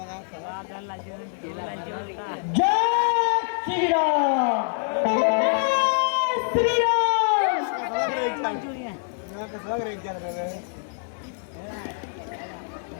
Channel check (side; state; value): right; silent; 62 dB below the other